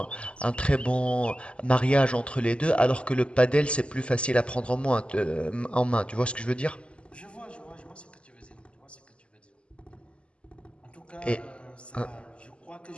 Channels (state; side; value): late; right; 0.055 ms